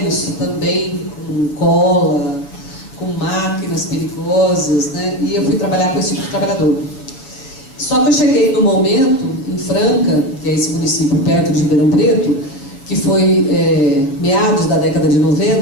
também, com cola, com máquinas perigosas, né? E eu fui trabalhar com esse tipo de trabalhador. Só que eu cheguei no momento, em Franca, que é esse município perto de Ribeirão Preto, que foi meados da década de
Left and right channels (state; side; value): late; right; 7.3 ms